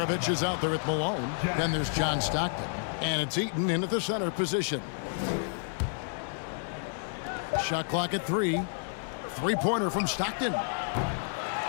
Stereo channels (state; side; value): silent; right; digital silence